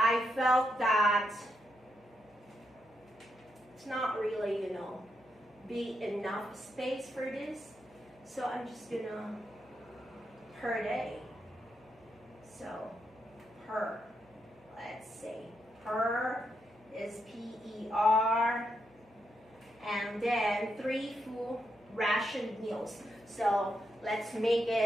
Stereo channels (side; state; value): both; normal; correlation 0.82